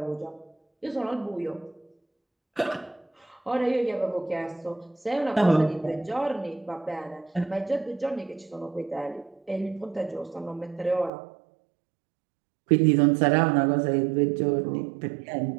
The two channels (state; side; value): drops out; left; at 11.1 s